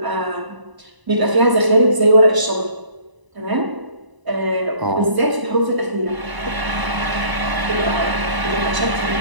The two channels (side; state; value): left; late; 1.0 ms